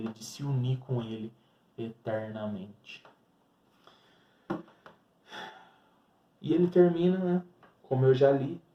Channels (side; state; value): both; identical; correlation 1.00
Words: de se unir com ele eternamente. E ele termina, né, como eu já li: